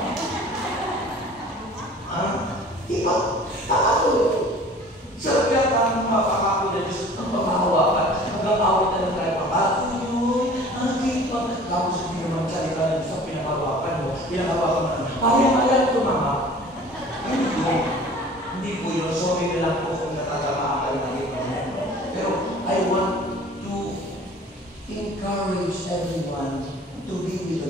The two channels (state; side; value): normal; both; correlation 0.46